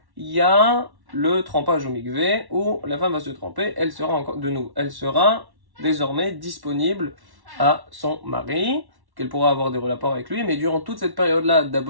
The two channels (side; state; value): left; late; 1.1 ms